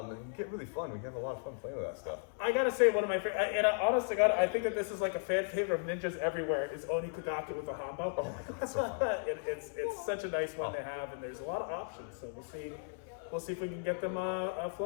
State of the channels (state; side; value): silent; right; 54 dB below the other